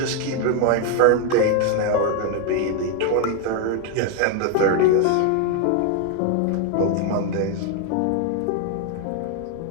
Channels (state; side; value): different; both; correlation 0.01